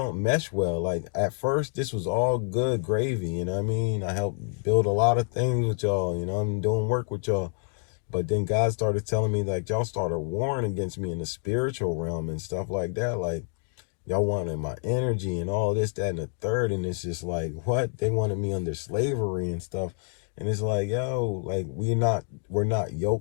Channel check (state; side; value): silent; right; 55 dB below the other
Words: mesh well. Like, at first this was all good gravy, you know what I mean? I helped build a lot of things with y'all, I'm doing work with y'all. But then God started telling me, like, y'all started warring against me in the spiritual realm and stuff like that. Like, y'all wanted my energy and all this, that, and the third. And it's just like, what? They wanted me under slavery and stuff. And it's like, yo, like, we're not